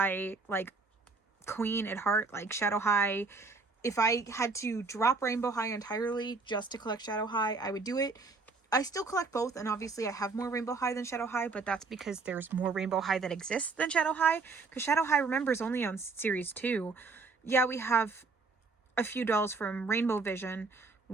like, queen at heart. Like, Shadow High, if I had to drop Rainbow High entirely just to collect Shadow High, I would do it. I still collect both, and obviously I have more Rainbow High than Shadow High, but that's because there's more Rainbow High that exists than Shadow High, because Shadow High, remember, is only on Series 2. Yeah, we have a few dolls from Rainbow Vision,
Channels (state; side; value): quieter; left; 4.2 dB